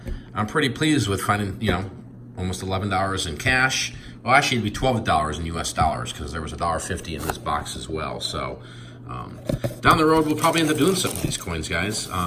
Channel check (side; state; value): both; identical; correlation 1.00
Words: I'm pretty pleased with finding, you know, almost $11 in cash. Well, actually, it'd be $12 in US dollars because there was $1.50 in this box as well. So down the road, we'll probably end up doing something with these coins, guys.